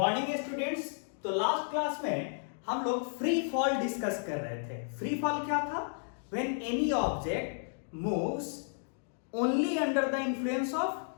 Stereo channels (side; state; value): right; silent; digital silence